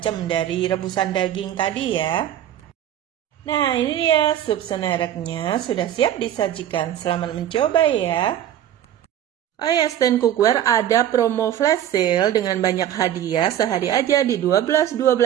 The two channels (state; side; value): quieter; left; 11.1 dB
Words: dari rebusan daging tadi ya. Nah, ini dia sup senereknya, sudah siap disajikan. Selamat mencoba ya. Oh ya, Stand Cookware ada promo flash sale dengan banyak hadiah sehari aja di 12.12